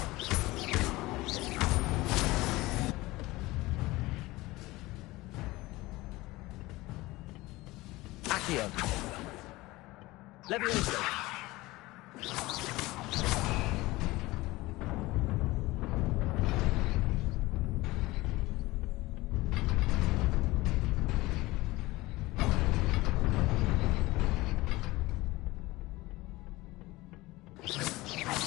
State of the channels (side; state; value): right; quieter; 20.0 dB